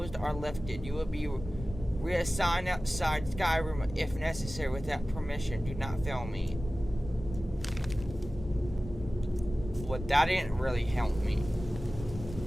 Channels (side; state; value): both; normal; correlation 0.96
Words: or lifted. You will be Reassign outside Skyrim if necessary without permission. Do not fail me. Well, that didn't really help me.